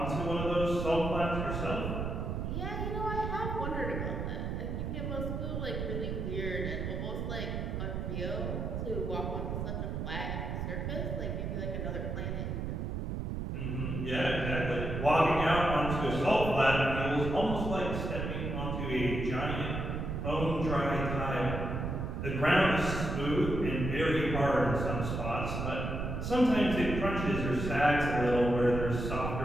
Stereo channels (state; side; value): noise; right; rumble, 3 dB below the sound